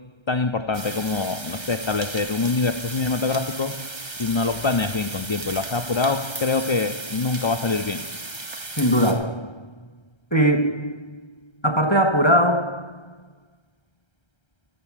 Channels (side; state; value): right; late; 1.3 ms